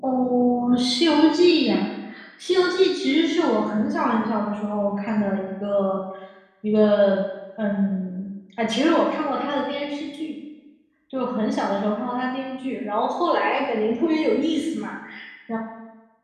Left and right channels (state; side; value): identical; both; correlation 1.00